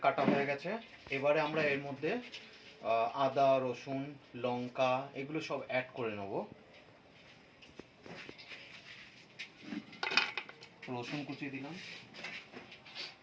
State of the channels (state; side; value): identical; both; correlation 1.00